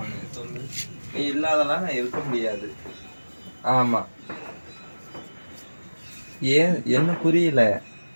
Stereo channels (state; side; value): inverted; both; correlation -1.00